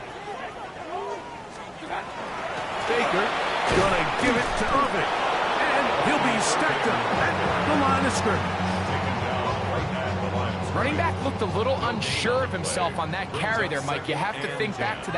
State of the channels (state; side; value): identical; both; correlation 1.00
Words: Baker gonna give it to Irvin. And he'll be stacked up at the line of scrimmage. Taken down right at the line of scrimmage. Running back looked a little unsure of himself on that carry there, Mike. You have to think back to